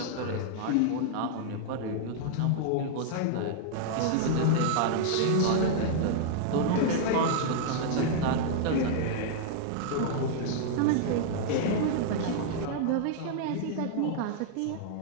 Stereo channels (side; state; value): both; different; correlation -0.01